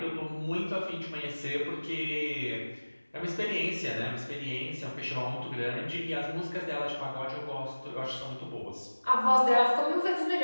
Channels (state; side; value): inverted; both; correlation -1.00